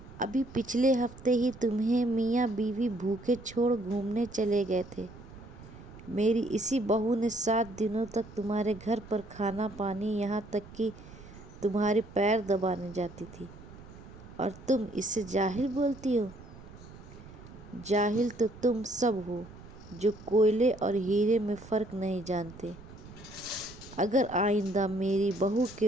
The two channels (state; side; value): noise; right; rumble, 18 dB below the sound